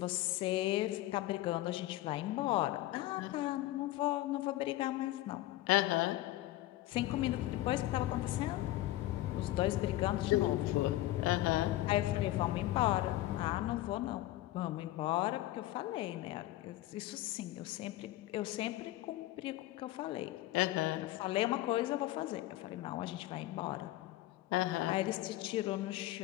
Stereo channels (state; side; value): quieter; right; 16.2 dB